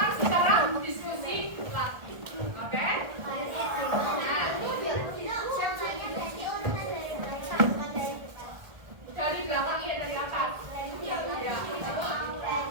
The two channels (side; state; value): left; late; 1.4 ms